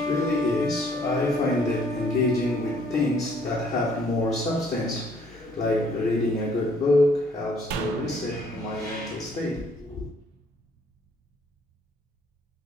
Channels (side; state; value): both; normal; correlation 0.63